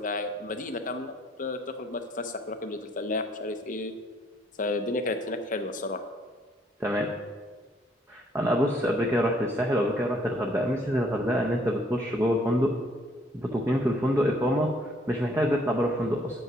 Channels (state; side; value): normal; both; correlation 0.65